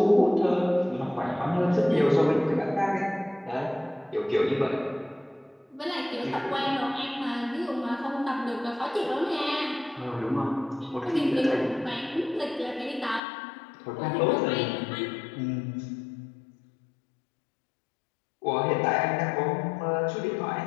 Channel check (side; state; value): right; drops out; at 13.2 s